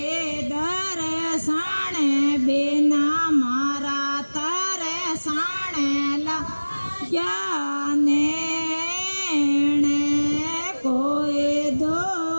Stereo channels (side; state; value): both; inverted; correlation -1.00